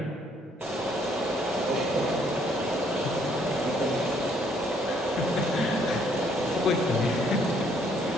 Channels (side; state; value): both; normal; correlation 0.66